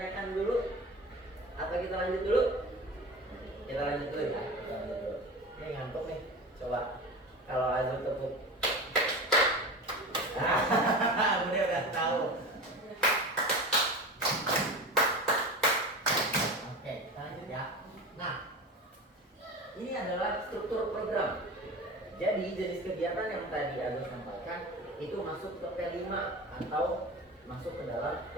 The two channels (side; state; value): both; normal; correlation 0.30